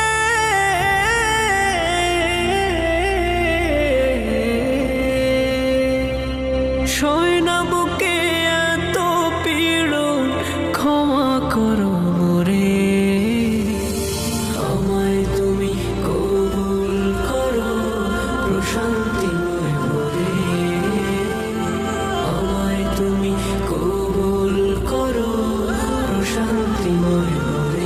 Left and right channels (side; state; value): both; identical; correlation 1.00